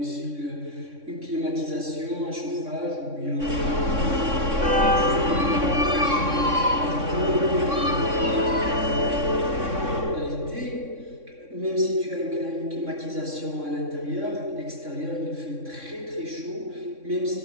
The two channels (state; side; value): late; left; 3.6 ms